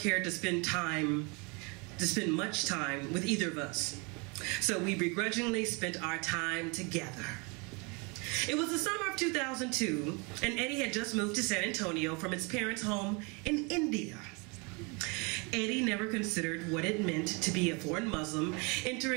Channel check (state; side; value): quieter; left; 30.5 dB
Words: cared to spend much time with either of us. So we begrudgingly spent our time together. It was the summer of 2002, and Eddie had just moved to San Antonio from his parents' home in India. Eddie never considered what it meant to be a foreign Muslim